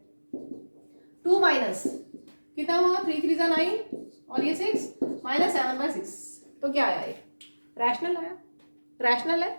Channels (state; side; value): inverted; both; correlation -1.00